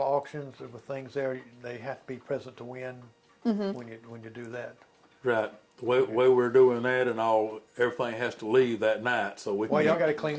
with things there, they have to be present to win when you do that. Right. The way we're doing that and all, everything has to leave that night. So we. Well, y'all got to clean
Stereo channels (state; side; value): identical; both; correlation 1.00